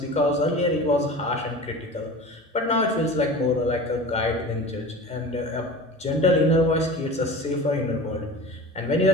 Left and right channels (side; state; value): both; normal; correlation 0.34